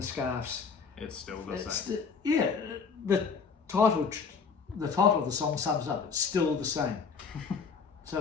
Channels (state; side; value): quieter; right; 5.6 dB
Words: scarves. It's still the same. The title of the song sums up. It's still the same. So